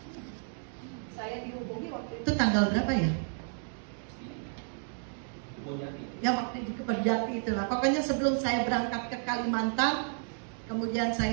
Saya dihubungi waktu itu tanggal berapa ya? Ya waktu di Kebonjati itulah. Pokoknya sebelum saya berangkat ke Kalimantan, kemudian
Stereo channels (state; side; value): silent; left; 57 dB below the other